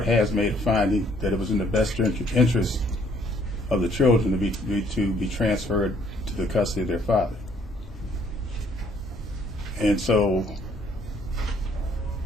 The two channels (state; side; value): normal; both; correlation 0.64